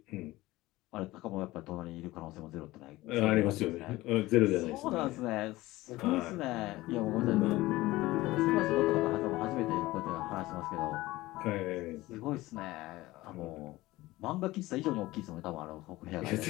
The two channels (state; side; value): quieter; right; 18.5 dB